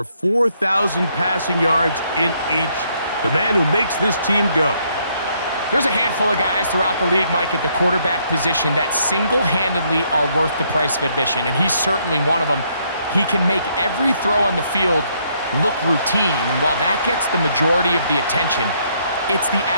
4,000 passing yards in each. The man who makes this team go. There's a handful of guys throughout the league, Mike, at the quarterback position that single-handedly are worth the price of admission, and he's certainly one of them. He can make every throw on the field look routine, and while that gets the majority of the attention, it's the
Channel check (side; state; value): both; inverted; correlation -0.71